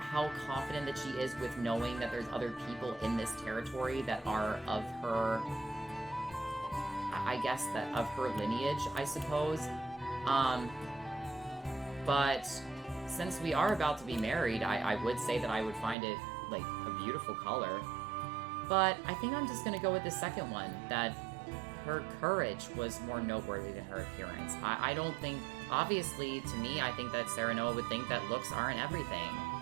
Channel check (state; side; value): drops out; left; at 16.0 s